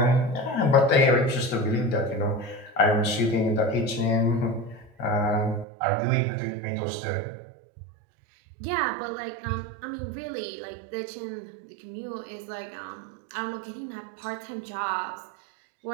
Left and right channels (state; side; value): drops out; left; at 5.7 s